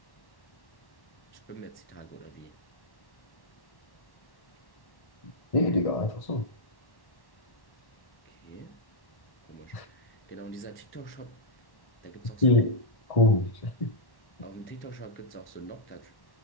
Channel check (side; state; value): right; late; 1.1 ms